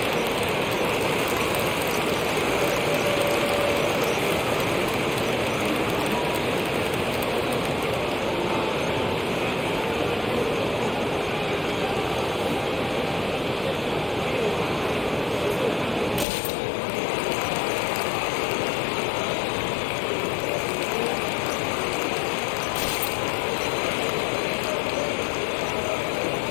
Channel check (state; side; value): drops out; right; at 16.2 s